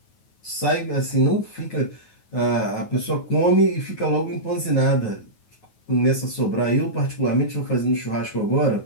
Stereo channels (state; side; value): late; right; 9.4 ms